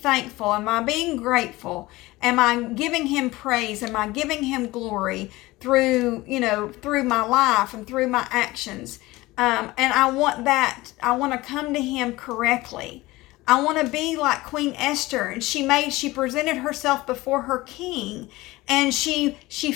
Am I being grateful? Am I giving him praise? Am I giving him glory through my life and through my actions? And I want to come to him correctly. I want to be like Queen Esther, and she presented herself before her king, and she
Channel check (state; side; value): quieter; right; 19.7 dB